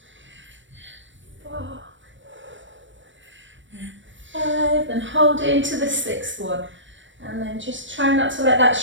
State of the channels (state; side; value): late; left; 0.55 ms